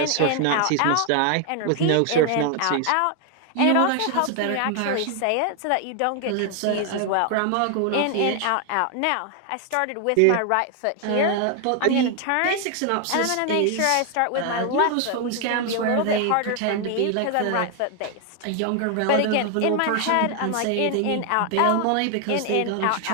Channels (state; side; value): different; both; correlation 0.01